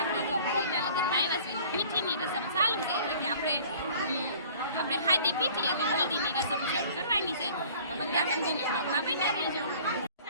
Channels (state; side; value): inverted; both; correlation -0.50